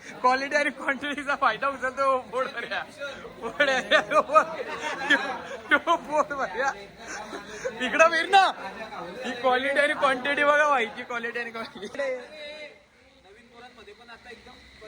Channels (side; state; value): both; identical; correlation 1.00